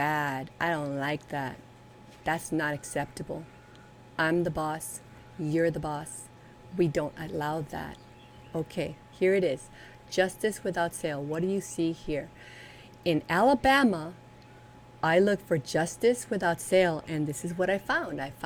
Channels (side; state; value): both; identical; correlation 1.00